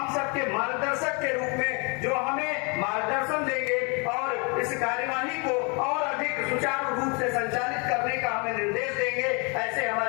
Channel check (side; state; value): right; quieter; 32.5 dB